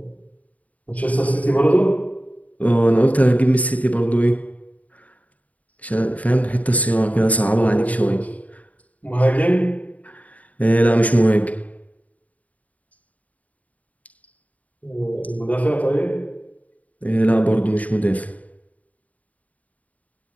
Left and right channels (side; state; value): right; late; 0.071 ms